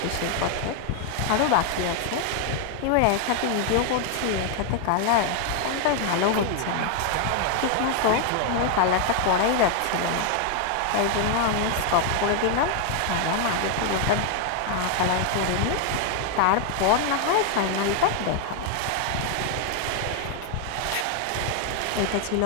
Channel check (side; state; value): both; different; correlation 0.00